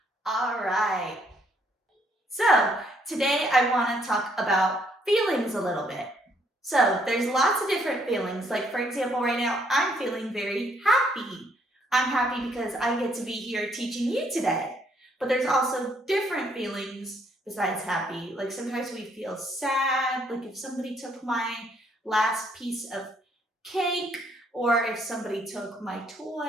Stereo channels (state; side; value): normal; both; correlation 0.69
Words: All right. So, today I want to talk about feelings a little bit. So, there's lots of different feelings. Like, for example, right now, I'm feeling very happy. I'm happy because I get to be here teaching you today. But there's also different feelings besides happy. Like, sometimes we feel sad, like if somebody took my last piece of cake, or if somebody took my